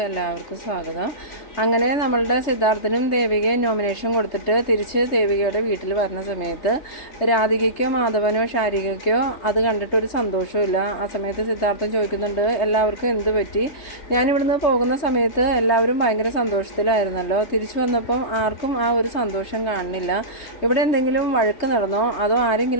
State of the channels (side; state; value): right; late; 3.3 ms